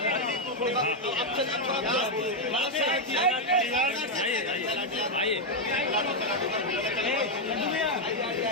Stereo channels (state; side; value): normal; both; correlation 0.01